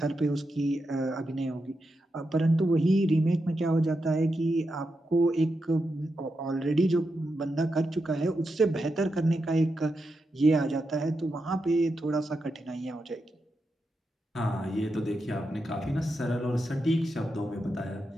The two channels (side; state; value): both; normal; correlation 0.87